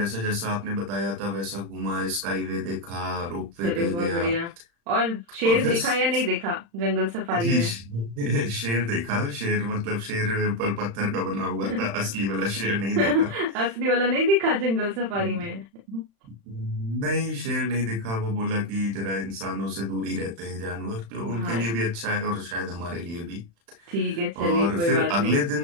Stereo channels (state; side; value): late; left; 35 ms